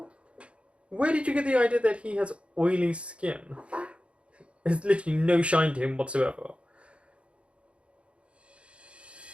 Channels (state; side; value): late; left; 0.059 ms